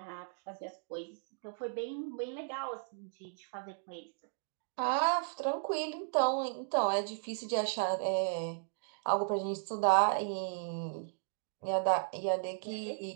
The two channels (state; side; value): silent; left; digital silence